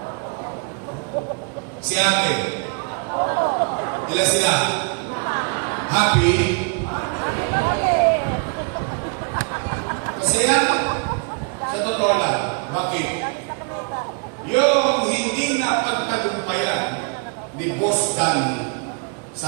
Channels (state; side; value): quieter; left; 37.0 dB